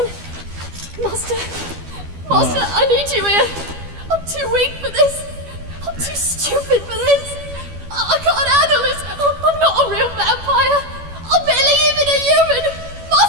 Master, I need you here. I'm too weak for this. I'm too stupid for this. I can't handle this. I'm not a real vampire. I'm barely even a human.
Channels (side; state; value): left; late; 12 ms